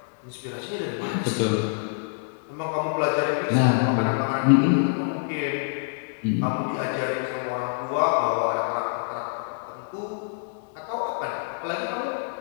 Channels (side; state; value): right; silent; 61 dB below the other